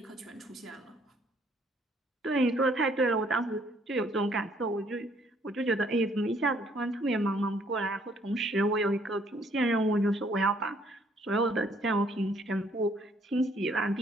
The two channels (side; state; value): both; normal; correlation 0.64